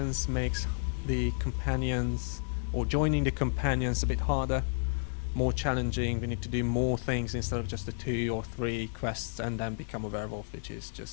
makes the companions, or joining the companions, a bit harder, more challenging. We need to do more things instead of just the 2 or 3 quests and then become a werewolf, which is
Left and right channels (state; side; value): silent; right; digital silence